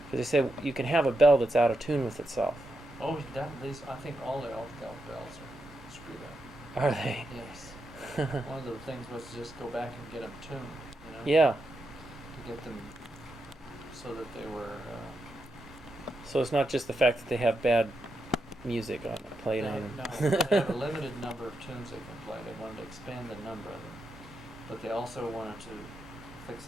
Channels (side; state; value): both; normal; correlation 0.84